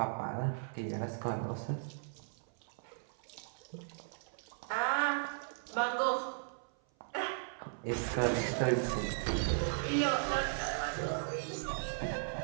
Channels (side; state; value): left; silent; 53 dB below the other